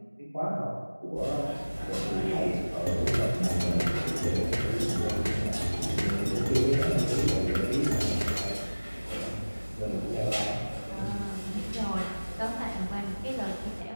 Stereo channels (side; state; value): both; inverted; correlation -1.00